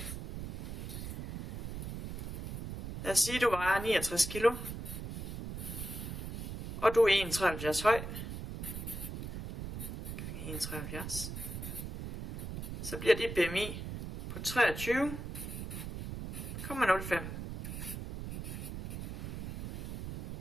Lad os sige, at du vejer 69 kilo, og du er 1,73 høj, gange 1,73, så bliver dit BMI på 23,05.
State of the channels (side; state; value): right; noise; rumble, 6 dB below the sound